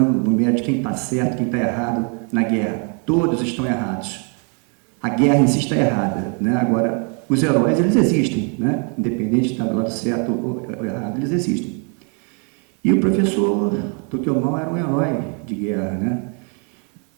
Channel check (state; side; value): quieter; left; 38.3 dB